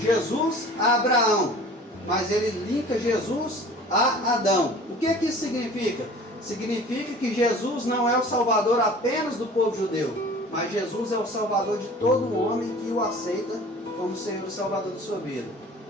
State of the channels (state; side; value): normal; both; correlation 0.44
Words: a Abraão, mas ele linka Jesus a Adão. O que isso significa? Significa que Jesus não é o salvador apenas do povo judeu, mas Jesus é o salvador de todo homem que o aceita como Senhor e Salvador de sua vida.